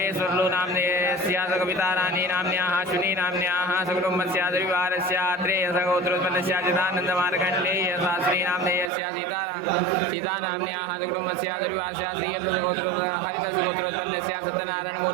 नामधेयस्य कविताराणी नाम्न्याः अश्विनी नाम्न्याः सकुटुम्बस्य द्विवारस्य अत्रेय गोत्रोत्पन्नस्य चिदानन्दमार्कण्डेय शास्त्री नामधेयस्य सीता नाम्न्याः सकुटुम्बस्य द्विवारस्य हरितस्य गोत्रोत्पन्नस्य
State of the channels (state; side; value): drops out; left; at 8.9 s